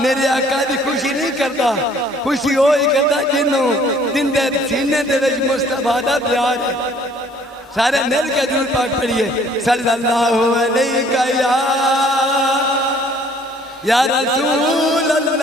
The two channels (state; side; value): normal; both; correlation 0.58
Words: آقا دی خوشی نہیں کرتا، خوشی ہوئی کرتا جنہوں دن دے سینے دے وچ مصطفیٰ دا پیار ہے۔ سارے مل کے درود پاک پڑھیے صلی اللہ علیہ یا رسول